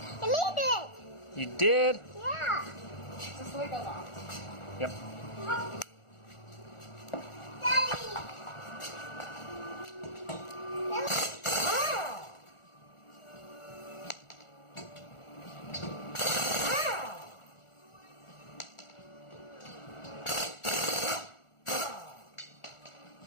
You need it. You did? Yeah. Just the way it goes off. Yep. Daddy.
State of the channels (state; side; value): late; right; 1.4 ms